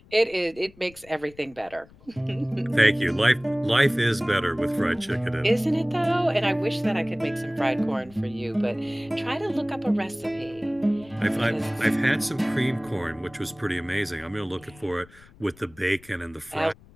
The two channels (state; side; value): noise; left; rumble, 24 dB below the sound